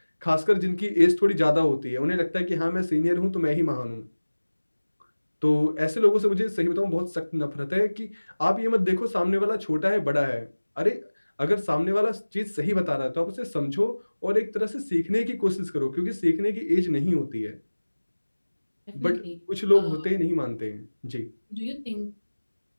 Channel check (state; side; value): inverted; both; correlation -1.00